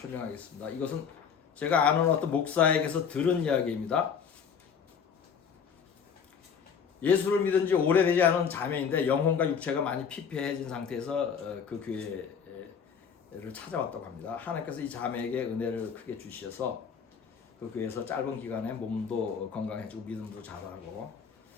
이것은 제가 아는 어떤 목사에게서 들은 이야기입니다. 예수를 믿은 지 오래되지 않은 자매인데 영혼과 육체가 많이 피폐해진 상태에서 그 교회를 찾아왔다고 합니다. 하나님께서 이 자매에게 은혜를 크게 주셔서 그 교회에서 짧은 기간에 몸도 건강해지고 믿음도 자라고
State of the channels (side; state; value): right; quieter; 6.9 dB